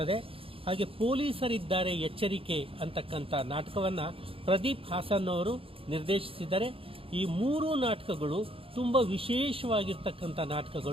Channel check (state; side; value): late; left; 0.27 ms